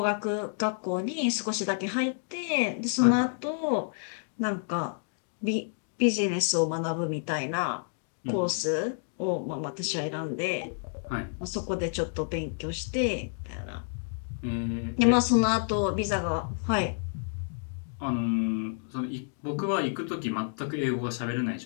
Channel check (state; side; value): silent; right; digital silence